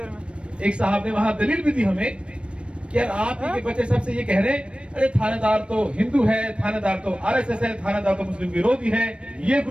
एक साहब ने वहां दलील भी दी हमें कि यार आप ही के बच्चे सबसे ये कह रहे हैं, अरे थानेदार तो हिंदू है, थानेदार तो आरएसएस है, थानेदार तो मुस्लिम विरोधी है, ये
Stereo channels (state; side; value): late; left; 0.058 ms